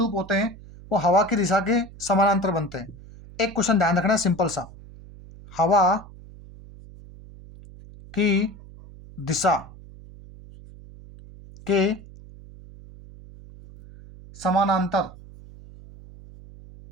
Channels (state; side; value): noise; right; hum, 19 dB below the sound